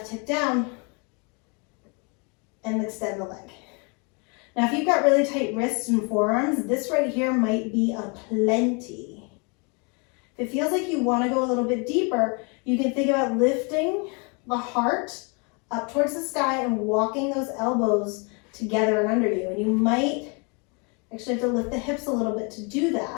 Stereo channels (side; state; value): right; quieter; 33.2 dB